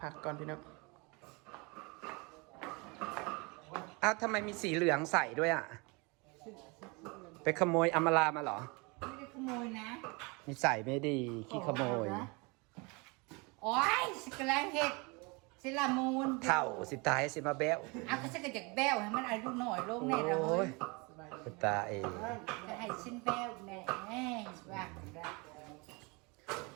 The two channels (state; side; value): quieter; left; 28.4 dB